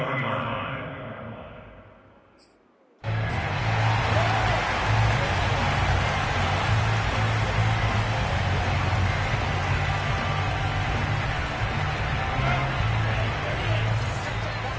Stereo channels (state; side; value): identical; both; correlation 1.00